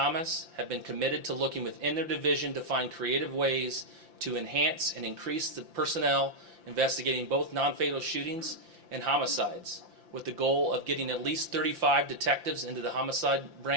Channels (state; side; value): late; left; 5.8 ms